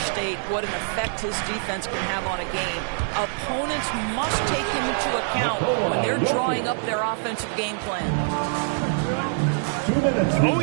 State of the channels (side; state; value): left; silent; 62 dB below the other